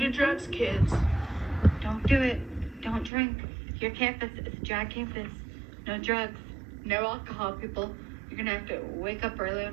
drugs, kids. Don't do it. Don't drink. Your campus is a dry campus. No drugs. No alcohol, people. You're going to have to wake up early on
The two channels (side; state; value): left; drops out; at 3.1 s